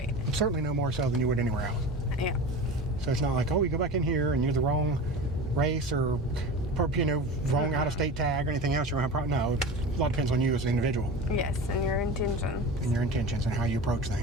Certainly no more so than you would anywhere else. Yeah. So it's not like, oh, you go back in here and you're the wrong race or, wrong out-of-state tag or anything else. You're going to have no. A lot depends on you as an individual. Yes, and your intentions. And your intentions and how you approach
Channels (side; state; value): both; normal; correlation 0.32